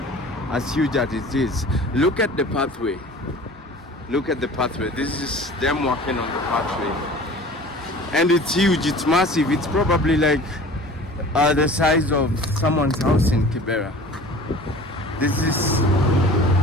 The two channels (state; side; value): normal; both; correlation 0.43